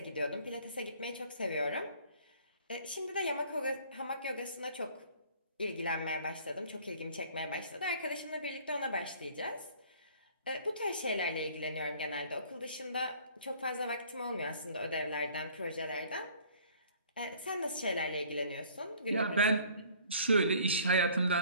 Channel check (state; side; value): inverted; both; correlation -0.53